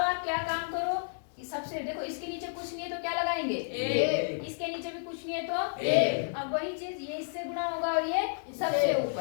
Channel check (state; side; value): silent; right; digital silence